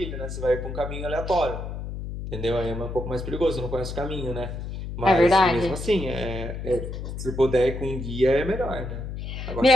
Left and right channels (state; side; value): noise; left; hum, 7 dB below the sound